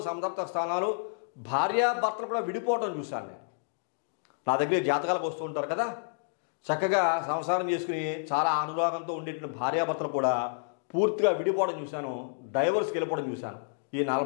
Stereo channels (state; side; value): silent; right; digital silence